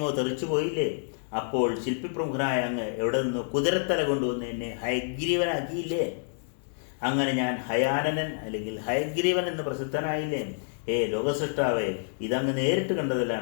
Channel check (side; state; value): right; silent; digital silence